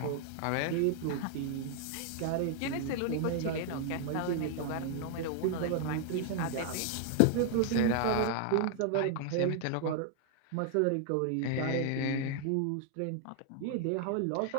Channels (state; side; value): different; both; correlation 0.00